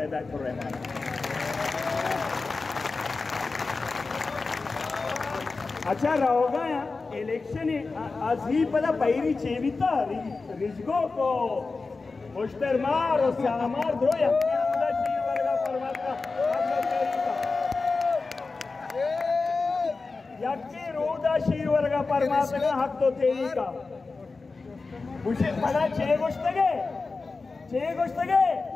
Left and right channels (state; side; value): quieter; right; 4.0 dB